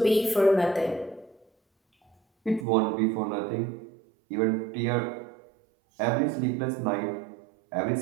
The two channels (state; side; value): drops out; left; at 2.7 s